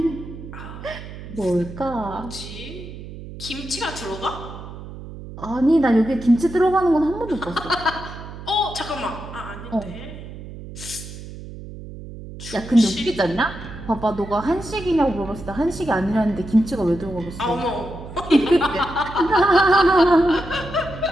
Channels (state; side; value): noise; right; hum, 13 dB below the sound